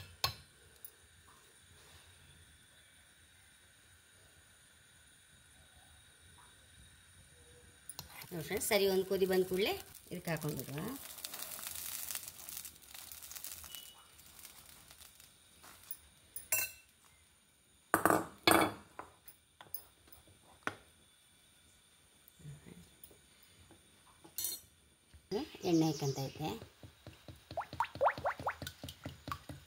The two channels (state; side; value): identical; both; correlation 1.00